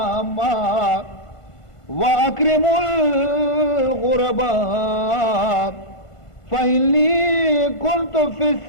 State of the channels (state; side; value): late; right; 1.5 ms